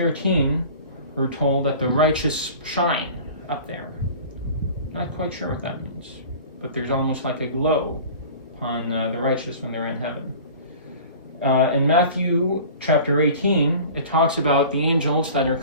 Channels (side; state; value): both; inverted; correlation -0.41